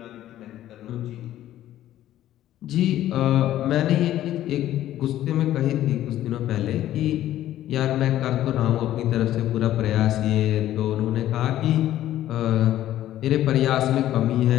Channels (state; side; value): quieter; right; 13.1 dB